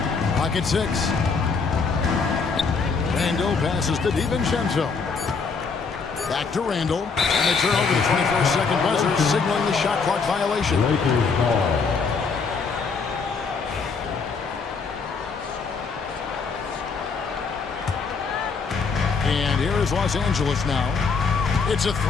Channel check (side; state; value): right; quieter; 5.0 dB